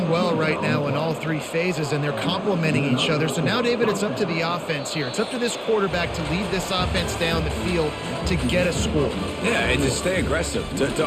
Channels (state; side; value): identical; both; correlation 1.00